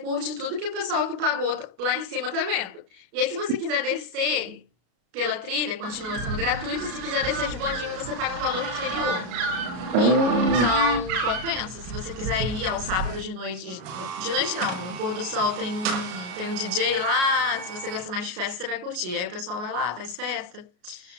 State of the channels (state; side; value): late; left; 33 ms